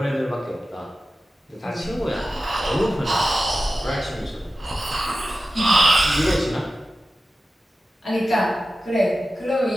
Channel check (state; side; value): normal; both; correlation 0.94